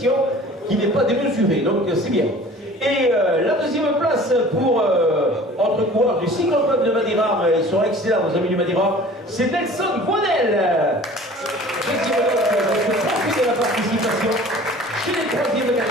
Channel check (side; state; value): both; normal; correlation 0.45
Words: qui n'est pas démesurée, donc c'est bien. Et la 2e place pour notre coureur du cycloclub de Madiran, ils sont excellents nos amis du Madiran, c'est Nelson Boinel. Profitez de la participation chez les 3e